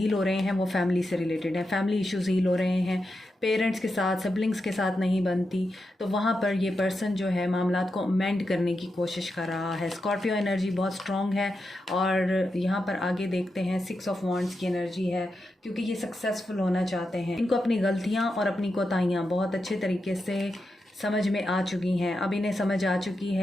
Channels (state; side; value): normal; both; correlation 0.87